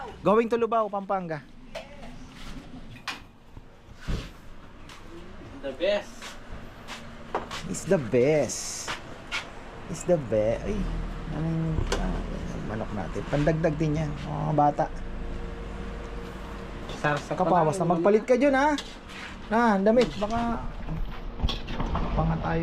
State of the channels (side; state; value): both; identical; correlation 1.00